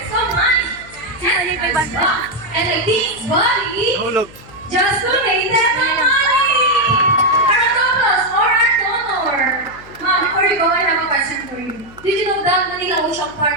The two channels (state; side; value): noise; left; hum, 21 dB below the sound